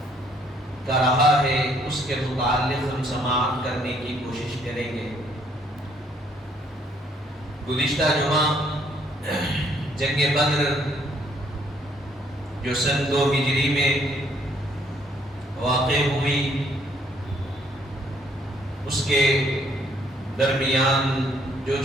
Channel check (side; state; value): both; normal; correlation 0.66